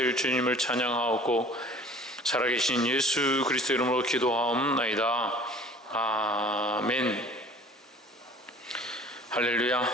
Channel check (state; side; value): normal; both; correlation 0.47